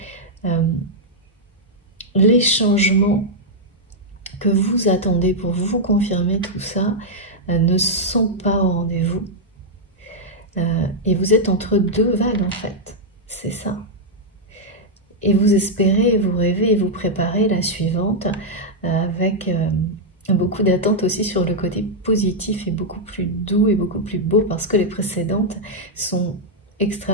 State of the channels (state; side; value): normal; both; correlation -0.04